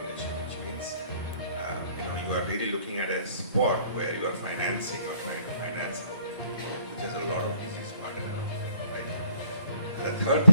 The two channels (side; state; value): both; inverted; correlation -0.62